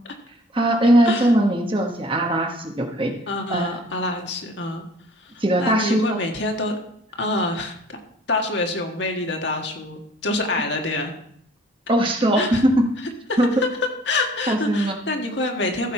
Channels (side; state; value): both; normal; correlation 0.52